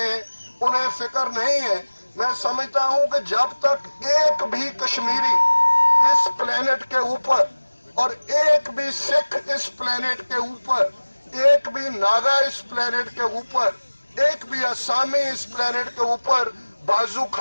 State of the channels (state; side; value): inverted; both; correlation -1.00